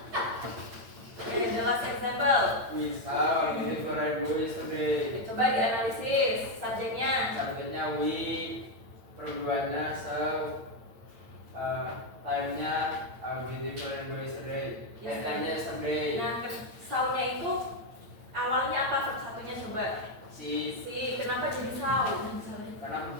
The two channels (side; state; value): left; late; 8.9 ms